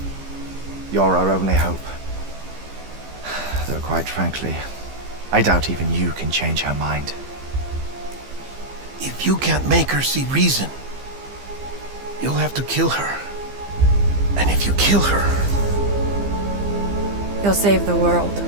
you're our only hope. Though quite frankly, I doubt even you can change her mind. If you can't make her see reason, you'll have to kill her. And if you kill her... You'll save the world,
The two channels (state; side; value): late; left; 15 ms